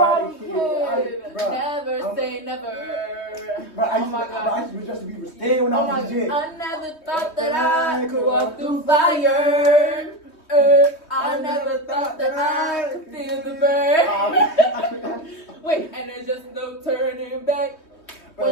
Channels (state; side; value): late; right; 3.2 ms